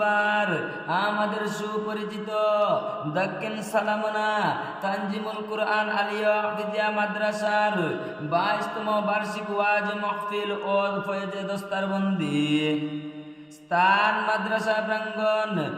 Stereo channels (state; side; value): identical; both; correlation 1.00